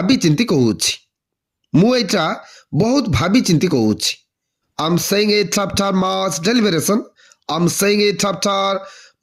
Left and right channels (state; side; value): identical; both; correlation 1.00